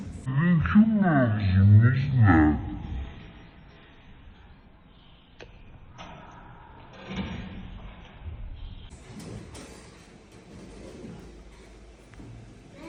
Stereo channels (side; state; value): both; identical; correlation 1.00